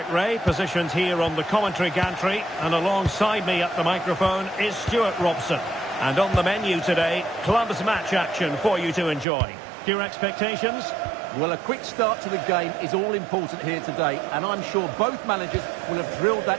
Ray, positioned here on the commentary gantry, and alongside me at the microphone is Stuart Robson. And on the menu today, clubs match action for you to enjoy. Your expectations? Well, a quick start to the game is all important here today, and I'm sure both managers will have drilled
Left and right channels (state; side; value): drops out; left; at 9.2 s